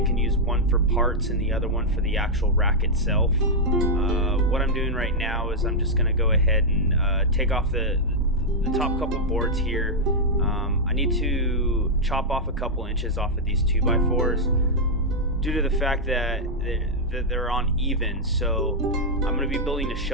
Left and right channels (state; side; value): normal; both; correlation -0.03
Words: I can use one for parts and the other one for the actual rack itself. What I'm doing right now is I'm just going to go ahead and take off the top couple boards here. I need to chop off a couple inches off of these 2x4s due to the fact that they're uneven. So I'm going to be building a